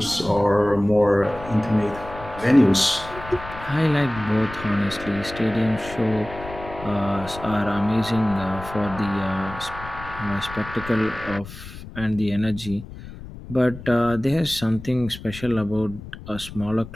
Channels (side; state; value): left; noise; rumble, 14 dB below the sound